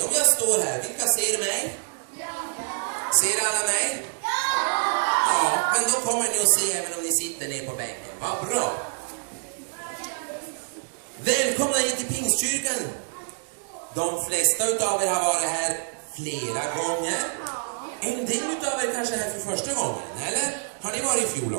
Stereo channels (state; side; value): silent; left; digital silence